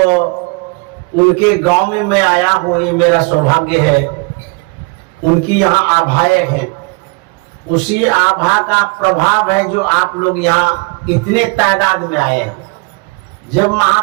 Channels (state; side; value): quieter; left; 30.5 dB